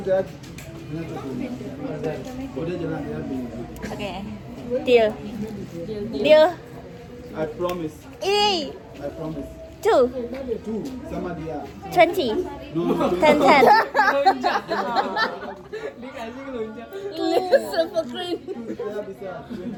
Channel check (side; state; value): both; identical; correlation 1.00